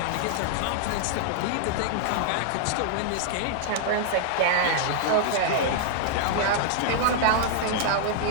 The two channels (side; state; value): both; different; correlation -0.01